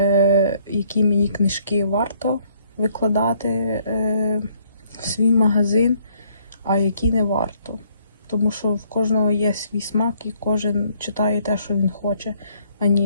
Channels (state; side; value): inverted; both; correlation -0.66